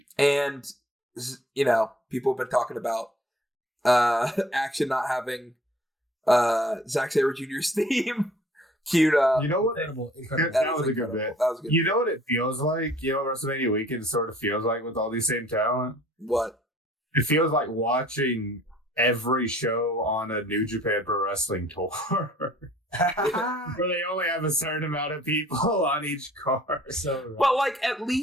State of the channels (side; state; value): both; normal; correlation 0.54